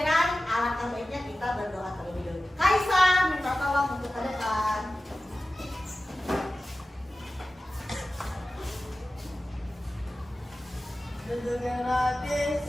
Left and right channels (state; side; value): normal; both; correlation 0.95